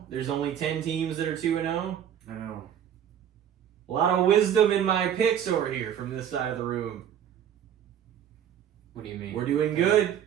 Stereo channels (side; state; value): left; quieter; 9.5 dB